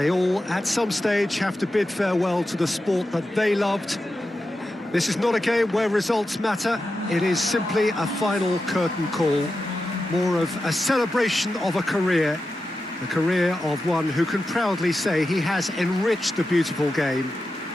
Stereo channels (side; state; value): both; normal; correlation 0.91